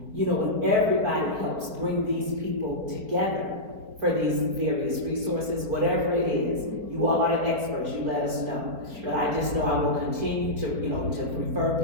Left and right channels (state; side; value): late; left; 4.4 ms